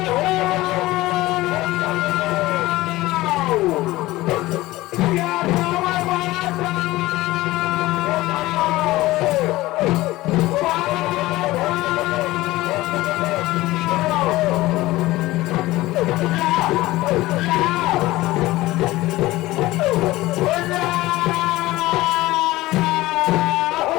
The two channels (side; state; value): right; quieter; 18.2 dB